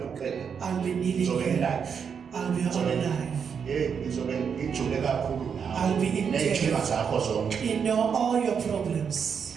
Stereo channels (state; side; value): quieter; left; 6.8 dB